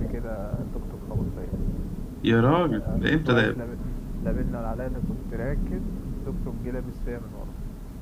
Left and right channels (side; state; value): both; identical; correlation 1.00